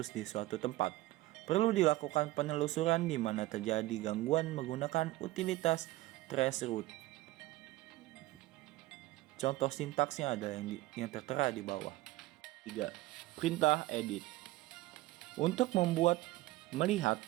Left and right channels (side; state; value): left; quieter; 17.9 dB